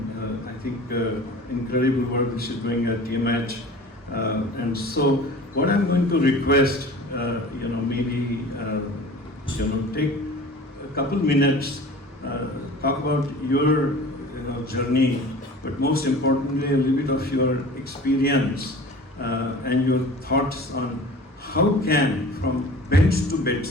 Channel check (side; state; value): both; normal; correlation 0.41